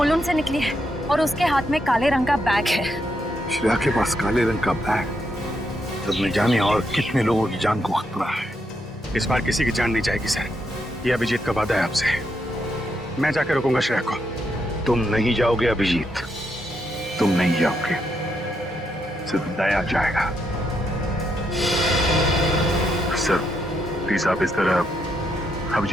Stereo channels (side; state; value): both; normal; correlation 0.79